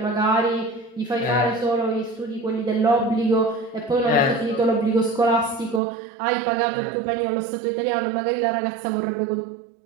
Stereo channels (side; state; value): left; drops out; at 5.8 s